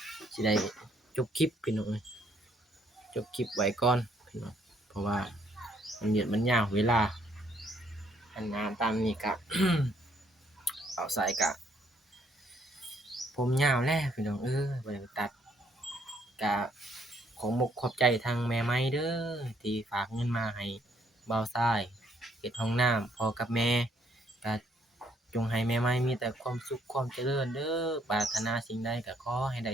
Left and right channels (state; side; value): normal; both; correlation 0.68